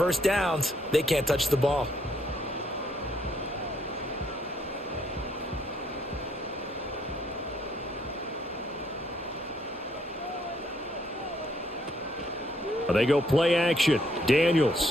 downs, they can't touch the ball. They go play action.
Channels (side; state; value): both; normal; correlation 0.70